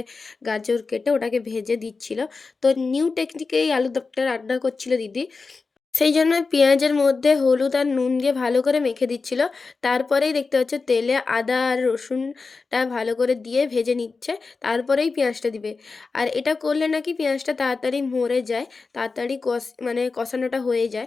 গাজর কেটে ওটাকে ভেজে দিচ্ছিল। তো নিউ টেকনিকেই আলুর দমটা রান্না করছিল দিদি। সেই জন্য পেঁয়াজের মধ্যে হলুদ আর নুন দিয়ে ভালো করে মেখে দিচ্ছিল। তারপরেই দেখতে পাচ্ছ তেলে আদা আর রসুনটা ভালো করে দিয়ে ভেজে নিচ্ছে। তারপরেই পেঁয়াজটা দিবে। আর এটা করলে নাকি পেঁয়াজটা তাড়াতাড়ি মরে যায়, তাড়াতাড়ি কষানোটা হয়ে যায়।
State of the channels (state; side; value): quieter; right; 4.3 dB